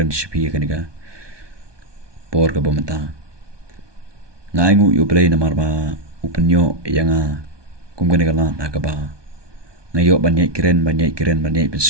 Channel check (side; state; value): left; late; 1.2 ms